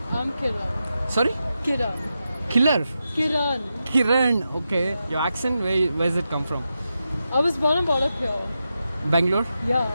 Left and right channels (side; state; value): both; inverted; correlation -0.89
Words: I'm Kiran. Sorry? Kiran. Killer? Kiran. Kiran, okay. Your accent, where does it come from? I was born and brought up here. Bangalore? Yeah.